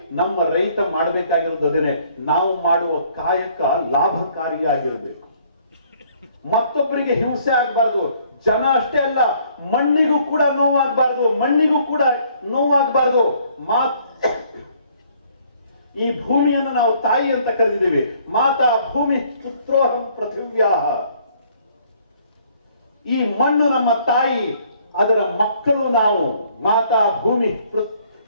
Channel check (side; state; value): both; inverted; correlation -0.62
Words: ನಮ್ಮ ರೈತ ಮಾಡಬೇಕಾಗಿರೋದು ಅದನ್ನೇ. ನಾವು ಮಾಡುವ ಕಾಯಕ ಲಾಭಕಾರಿಯಾಗಿರಬೇಕು, ಮತ್ತೊಬ್ಬರಿಗೆ ಹಿಂಸೆ ಆಗಬಾರ್ದು. ಜನ ಅಷ್ಟೇ ಅಲ್ಲ, ಮಣ್ಣಿಗೂ ಕೂಡ ನೋವಾಗಬಾರ್ದು, ಮಣ್ಣಿಗೂ ಕೂಡ ನೋವಾಗಬಾರ್ದು. ಈ ಭೂಮಿಯನ್ನು ನಾವು ತಾಯಿ ಅಂತ ಕರೆದಿದ್ದೀವಿ. ಮಾತಾ ಭೂಮಿ ಪುತ್ರೋಹಂ ಪೃಥಿವ್ಯಾಹ. ಈ ಮಣ್ಣು ನಮ್ಮ ತಾಯಿ, ಅದರ ಮಕ್ಕಳು ನಾವು. ಮಾತಾ ಭೂಮಿ